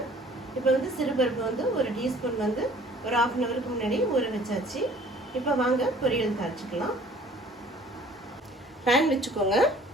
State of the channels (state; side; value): normal; both; correlation 0.53